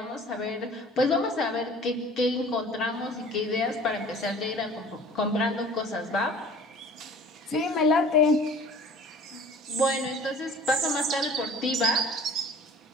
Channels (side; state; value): both; normal; correlation 0.46